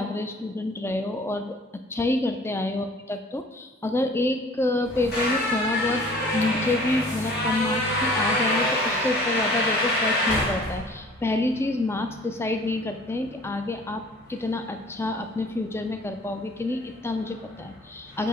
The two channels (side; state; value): both; normal; correlation 0.51